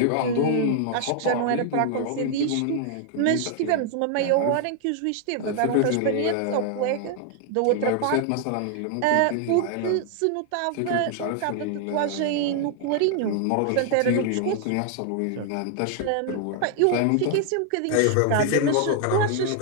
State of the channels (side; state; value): both; different; correlation 0.00